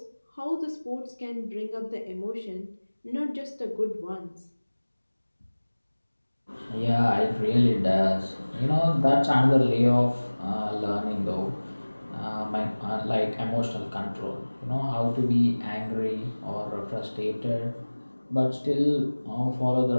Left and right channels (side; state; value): both; inverted; correlation -1.00